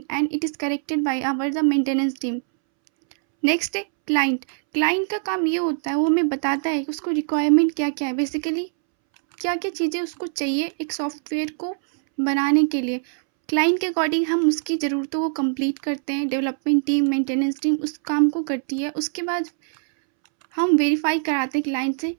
and it is corrected by our the maintenance team. Next है क्लाइंट. क्लाइंट का काम ये होता है वो हमें बताता है कि उसको रिक्वायरमेंट क्या क्या है, बेसिकली क्या क्या चीज़ें उसको चाहिए एक सॉफ्टवेयर को बनाने के लिए. क्लाइंट के अकॉर्डिंग हम उसकी ज़रूरतों को कंप्लीट करते हैं. डेवलपमेंट टीम मेंटेनेंस टीम उस काम को करती है. उसके बाद हम वेरीफाई कराते हैं क्लाइंट से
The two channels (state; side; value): silent; left; 64 dB below the other